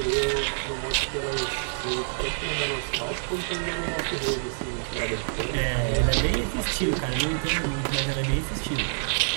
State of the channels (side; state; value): left; silent; 60 dB below the other